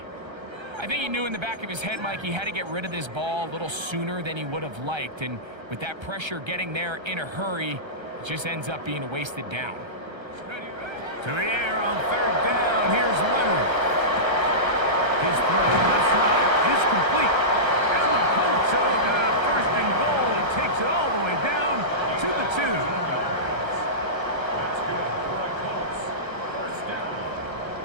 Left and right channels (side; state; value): left; late; 1.3 ms